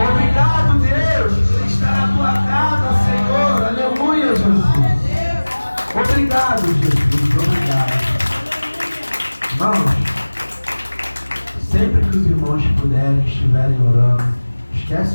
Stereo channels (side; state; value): both; inverted; correlation -1.00